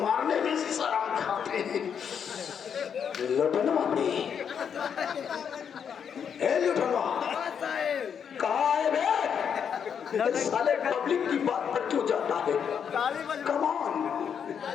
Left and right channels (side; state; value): right; quieter; 7.5 dB